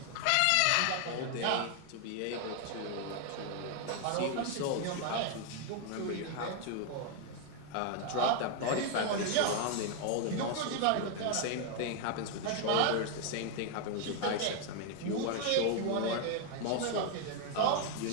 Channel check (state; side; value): different; both; correlation 0.01